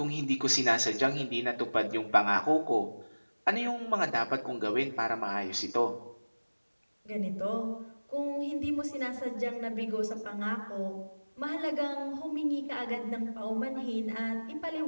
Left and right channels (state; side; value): inverted; both; correlation -1.00